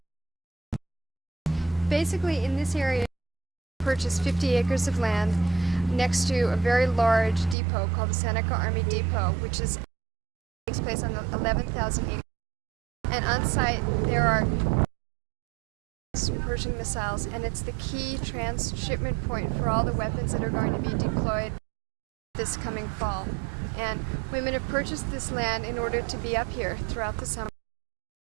Basically, in this area, I purchased 50 acres of land next to a very large depot called the Seneca Army Depot, which takes place on the 11,000 acres. And on site, there are Persian missiles, and it's the key transshipment point for all the weapons that are going to be deployed this coming fall. And women have purchased this land in order to be up here throughout the summer,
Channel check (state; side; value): drops out; left; at 7.6 s